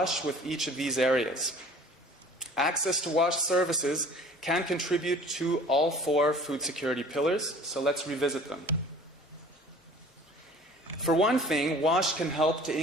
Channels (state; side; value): normal; both; correlation 0.48